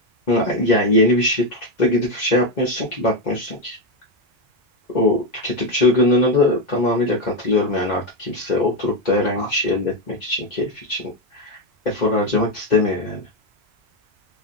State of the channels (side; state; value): both; normal; correlation 0.07